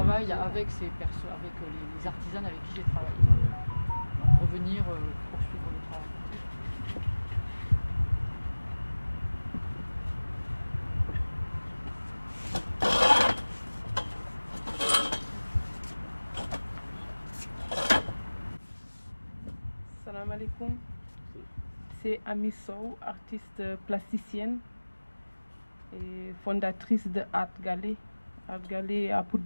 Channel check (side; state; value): both; inverted; correlation -1.00